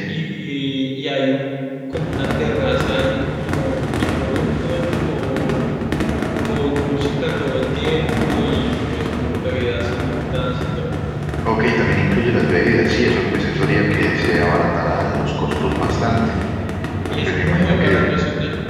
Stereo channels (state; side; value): identical; both; correlation 1.00